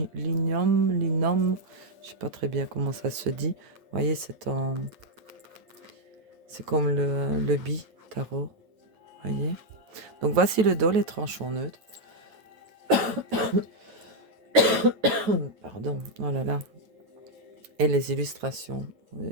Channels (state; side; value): late; left; 9.3 ms